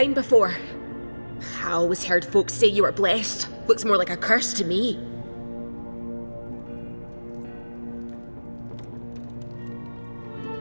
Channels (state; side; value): inverted; both; correlation -1.00